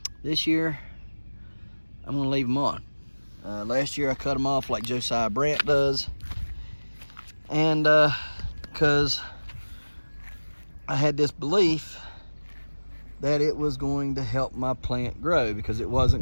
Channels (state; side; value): inverted; both; correlation -1.00